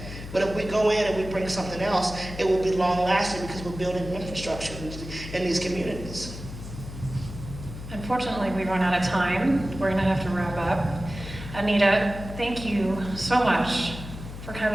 But if we go in and we bring something else, it will be long-lasting because we're building infrastructure in these communities. Unfortunately, we've run out of time. We're going to have to wrap up. Anita, thank you so much for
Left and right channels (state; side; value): noise; left; hum, 11 dB below the sound